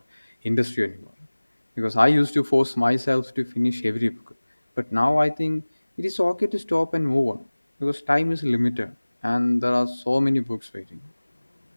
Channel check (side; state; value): both; inverted; correlation -1.00